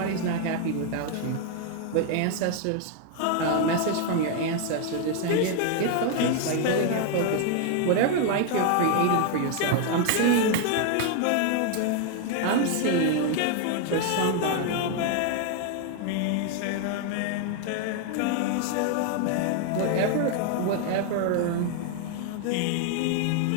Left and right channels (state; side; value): different; both; correlation 0.00